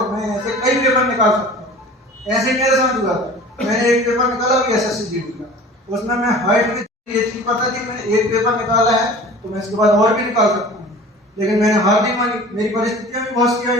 मैं ऐसे कई पेपर निकाल सकता हूँ। ऐसे मेरे साथ हुआ था। मैंने एक पेपर निकाला भी SSC GD का, उसमें मैं हाइट में ये चीज पता थी मैंने एक पेपर निकाला है तो मैं इसके बाद और भी निकाल सकता हूँ। लेकिन मैंने हार नहीं मानी। मेरी परिस्थितियां भी बहुत सी आई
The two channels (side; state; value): both; normal; correlation 0.42